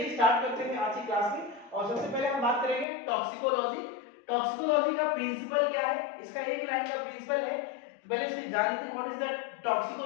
स्टार्ट करते हैं आज की क्लास में। और सबसे पहले हम बात करेंगे टॉक्सिकोलॉजी। टॉक्सिकोलॉजी का प्रिंसिपल क्या है, इसका एक लाइन का प्रिंसिपल है। तो पहले इसकी जान लेते हैं व्हाट इज द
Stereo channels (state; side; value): drops out; right; at 2.9 s